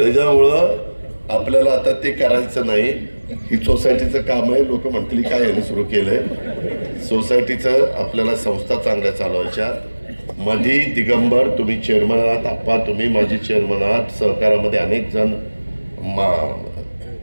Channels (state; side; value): inverted; both; correlation -1.00